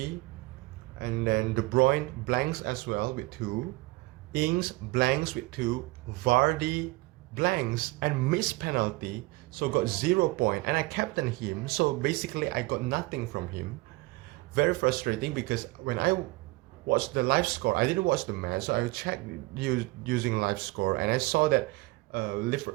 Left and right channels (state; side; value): quieter; left; 22.1 dB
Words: And then De Bruyne blanks as well with 2. Ings blanks with 2. Vardy blanks and missed penalty, so got 0 point. And I captained him, so basically I got nothing from him. Very frustrating because when I watched the live score, I didn't watch the match, so I checked using live score and I saw that